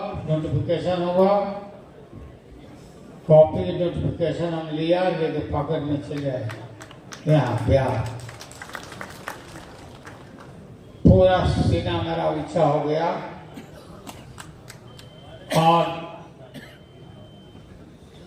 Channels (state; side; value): identical; both; correlation 1.00